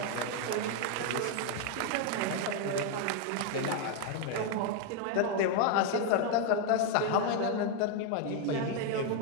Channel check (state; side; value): different; both; correlation 0.01